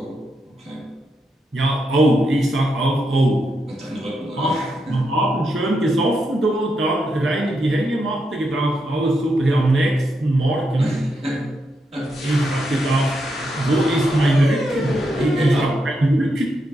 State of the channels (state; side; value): normal; both; correlation 0.82